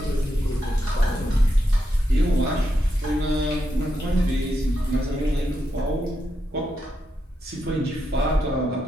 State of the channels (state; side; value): normal; both; correlation 0.84